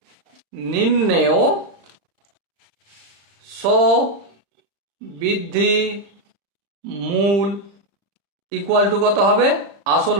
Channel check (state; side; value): late; left; 35 ms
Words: নিম্নেয় বৃদ্ধি মূল ইকুয়াল টু কত হবে? আসল